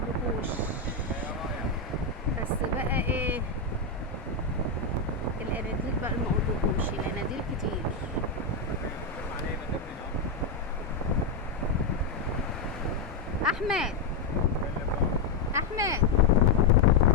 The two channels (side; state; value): right; quieter; 3.9 dB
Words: بس بقى ايه الاناديل بقى مقولكوش، الاناديل كتير. احمد احمد